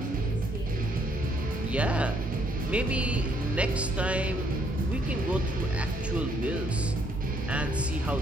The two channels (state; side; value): normal; both; correlation 0.69